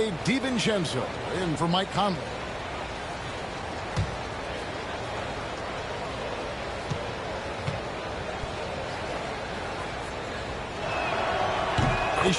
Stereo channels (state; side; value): identical; both; correlation 1.00